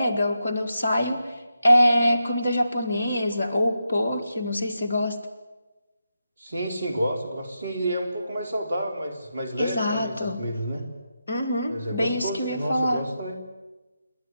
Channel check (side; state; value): both; inverted; correlation -0.86